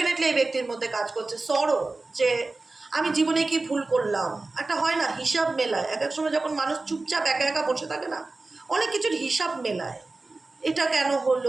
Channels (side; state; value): left; quieter; 3.4 dB